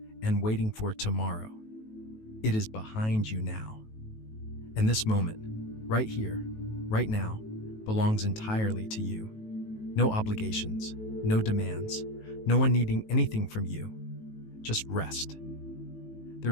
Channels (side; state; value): right; late; 18 ms